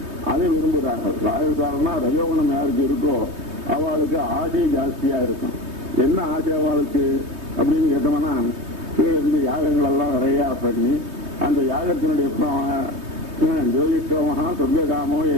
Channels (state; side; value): late; left; 3.2 ms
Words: அதை விரும்புகிறார்கள். ராஜசாகனா ரஜோகுணம் யாருக்கு இருக்கோ அவளுக்கு ஆசை ஜாஸ்தியா இருக்கும். என்ன ஆசை அவளுக்கு அப்படின்னு கேட்டோம்னா கீழே இருந்து யாகங்கள் எல்லாம் நிறையா பண்ணி அந்த யாகத்தினுடைய ஜோதிஷ்டோமகா சொர்க்காமோ